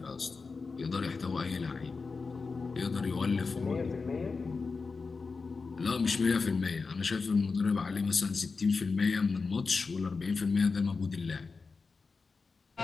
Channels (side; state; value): right; quieter; 4.5 dB